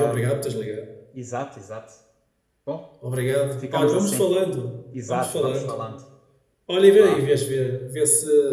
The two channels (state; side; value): identical; both; correlation 1.00